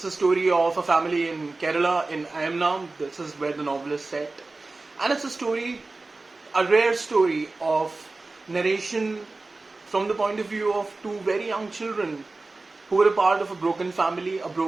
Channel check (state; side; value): quieter; left; 3.4 dB